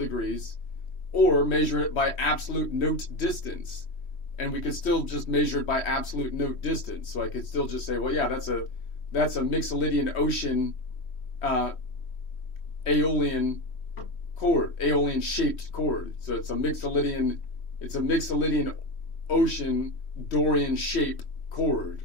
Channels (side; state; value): right; late; 3.1 ms